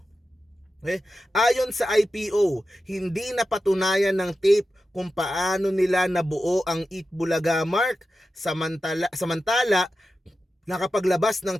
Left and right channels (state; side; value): normal; both; correlation 0.91